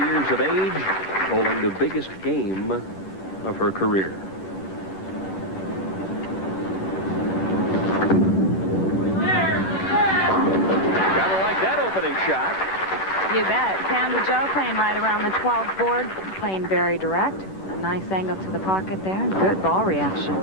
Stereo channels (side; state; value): right; late; 10 ms